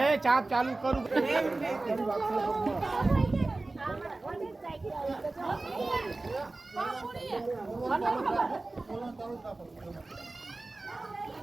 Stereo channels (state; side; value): quieter; left; 3.2 dB